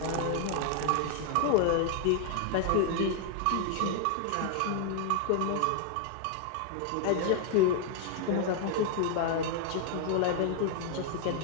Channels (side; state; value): both; different; correlation 0.00